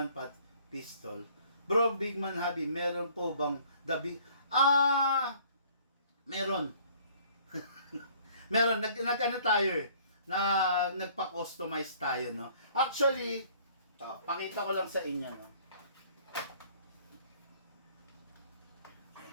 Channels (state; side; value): inverted; both; correlation -0.57